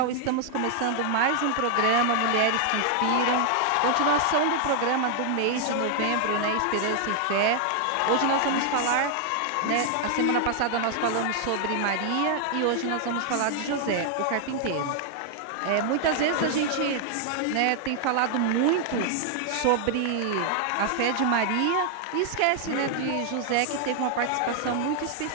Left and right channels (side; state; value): both; different; correlation 0.00